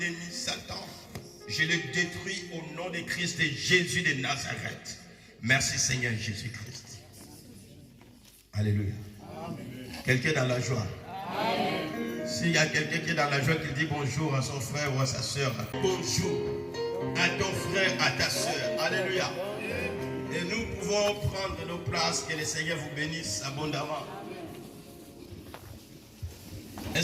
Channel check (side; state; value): both; identical; correlation 1.00